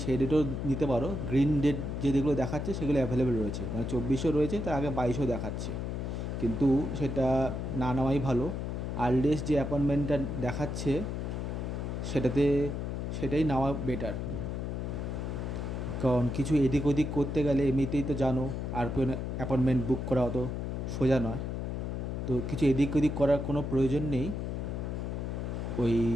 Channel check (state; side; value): noise; left; hum, 3 dB below the sound